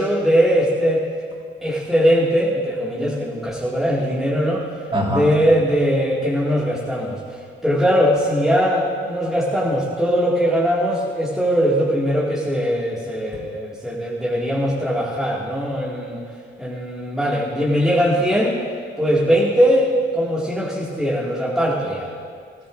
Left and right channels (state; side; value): normal; both; correlation 0.75